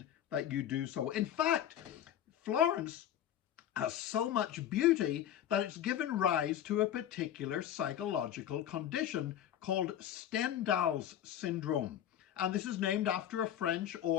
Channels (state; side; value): quieter; right; 10.7 dB